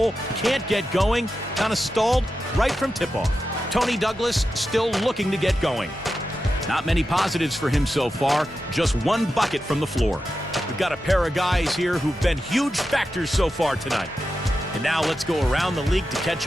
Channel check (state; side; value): normal; both; correlation 0.90